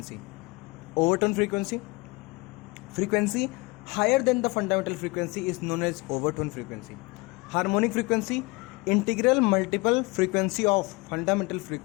Overtone frequency, frequency higher than the fundamental frequency is known as overtone frequency. Harmonic frequency, integral multiple frequency of fundamental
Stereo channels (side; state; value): right; quieter; 25.1 dB